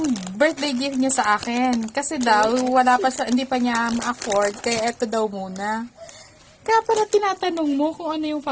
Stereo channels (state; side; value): identical; both; correlation 1.00